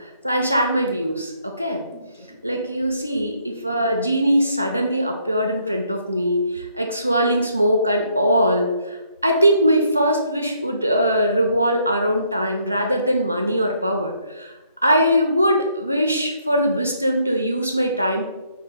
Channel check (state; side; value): inverted; both; correlation -0.69